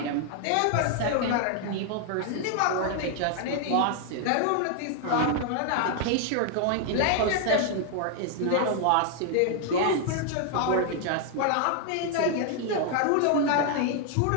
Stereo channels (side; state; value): both; different; correlation 0.00